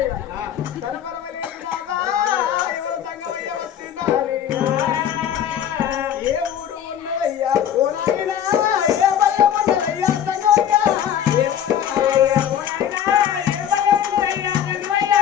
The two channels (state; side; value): quieter; right; 9.6 dB